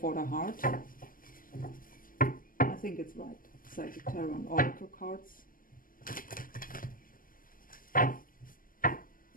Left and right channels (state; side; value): late; right; 0.41 ms